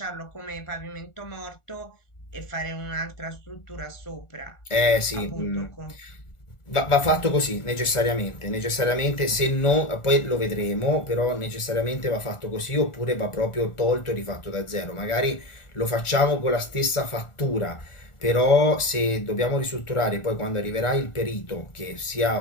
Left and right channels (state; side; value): late; right; 1.4 ms